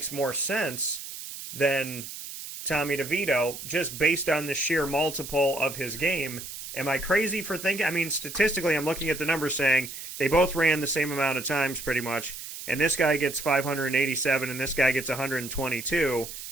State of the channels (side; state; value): right; noise; hiss, 10 dB below the sound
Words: more sense than Tommy DeVito just based on the sheer multiple of his game. Am I crazy for thinking? I mean, statistically, I'm looking at the numbers saying they both ran the same amount of times pretty much, and this guy gets 587 and this guy gets 122.